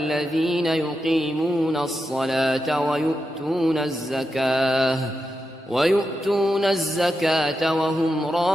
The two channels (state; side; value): normal; both; correlation 0.88